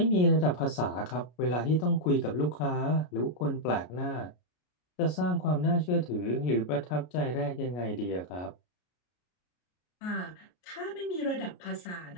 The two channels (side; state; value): right; late; 33 ms